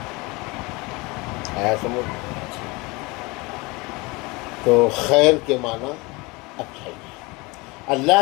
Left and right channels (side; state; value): right; quieter; 25.0 dB